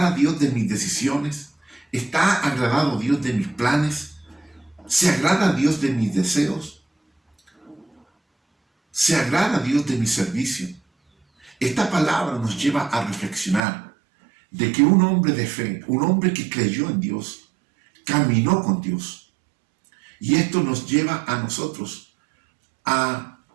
Dios de mis decisiones? ¿Está agradado Dios de mis planes? ¿Se agrada Dios de mis deseos? ¿Se agrada Dios de mi servicio? Esta palabra nos lleva a reflexionar de que un hombre de fe, un hombre que creyó en Dios, caminó con Dios. Y esto nos lleva a nosotros a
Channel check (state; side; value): drops out; left; at 13.6 s